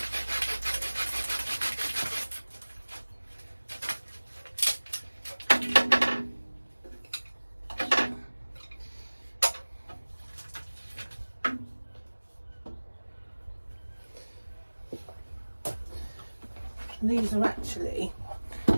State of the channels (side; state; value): both; inverted; correlation -1.00